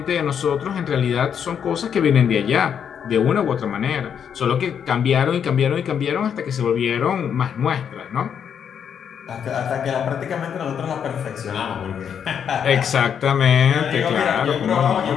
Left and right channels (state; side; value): quieter; right; 7.9 dB